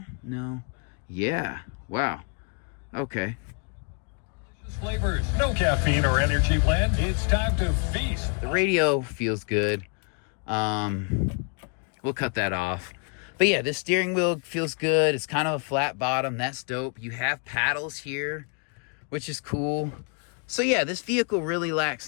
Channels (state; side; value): quieter; right; 37.8 dB